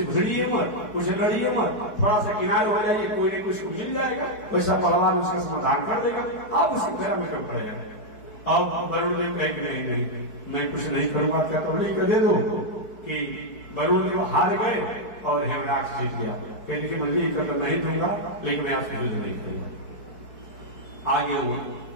भिड़िए मत, उससे लड़िए मत, थोड़ा सा किनारे हो जाइए, कोई न कोई उसको मिल जाएगा, वैसा बलवान उसका समाधान कर देगा, आप उसकी फेरा में कम पड़ेगा। अब वरुण देव कहे कि नहीं मैं कुछ नहीं करूंगा, क्या तो नहीं कर दे दो कि वरुण देव हार गए और हिरणाक्ष जीत गया। कहने की मंजिल कर तो नहीं दूंगा लेकिन मैं आपसे युद्ध नहीं करूंगा। आगे वो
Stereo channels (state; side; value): late; right; 4.6 ms